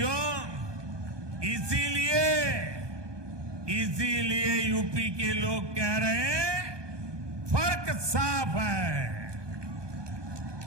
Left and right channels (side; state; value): left; late; 1.2 ms